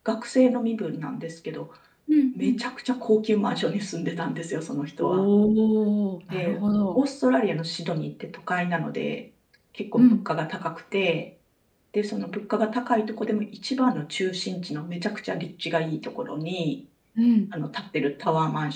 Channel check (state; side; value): identical; both; correlation 1.00